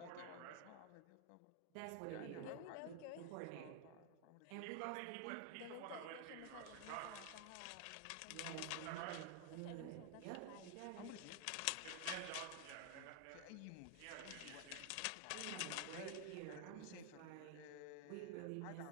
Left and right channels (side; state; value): both; different; correlation 0.00